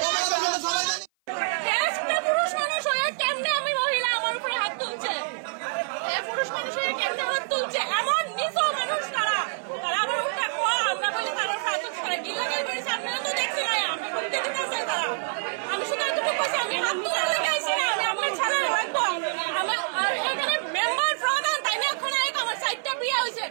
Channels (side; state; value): left; silent; 55 dB below the other